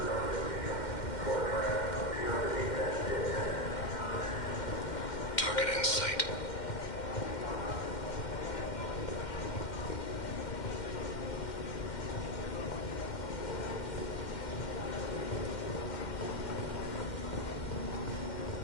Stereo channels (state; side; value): late; right; 2.1 ms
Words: Target in sight.